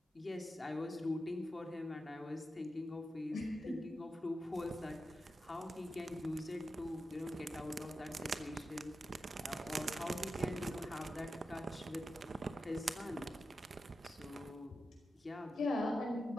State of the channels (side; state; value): both; normal; correlation 0.90